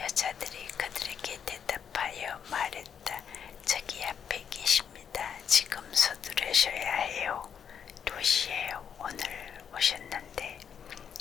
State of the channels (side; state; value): right; quieter; 7.7 dB